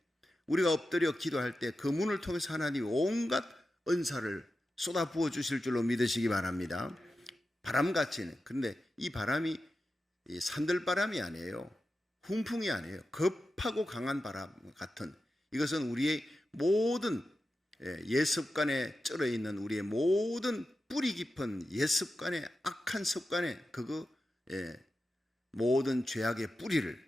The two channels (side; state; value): both; normal; correlation 0.91